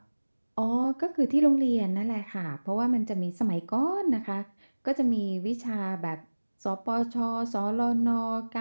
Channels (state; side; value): inverted; both; correlation -1.00